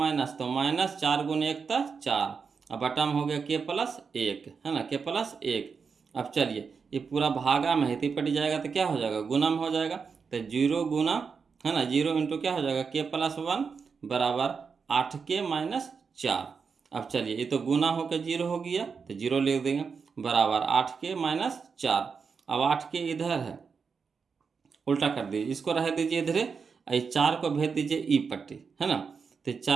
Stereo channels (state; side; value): quieter; left; 5.6 dB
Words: तो -4 गुने 1 तो 4, अब बटा में हो गया k प्लस 1, है ना, k प्लस 1। अब चलिए ये पूरा भागा में हिती पट जाएगा तो क्या हो जाएगा गुना में हो जाएगा, तो 0 गुना, है ना, 0 इंटू क्या हो जाएगा k प्लस 1 बराबर 8k माइनस 4। अब चलिए ये तो गुना होकर 0 हो गया, तो 0 लिख देंगे बराबर 8k माइनस 4। अब 8k इधर है, उल्टा कर दीजिए, इसको रह दीजिए इधर, 4 को भेज दीजिए ई पट्टी, है ना। तो